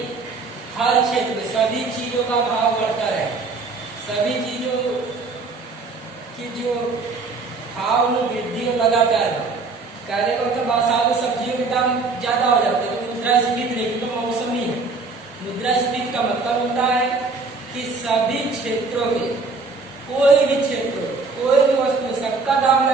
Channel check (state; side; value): quieter; left; 4.1 dB